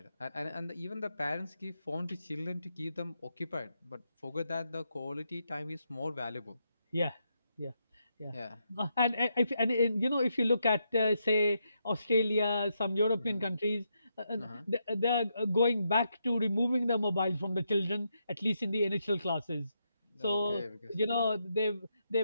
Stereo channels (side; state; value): both; inverted; correlation -0.81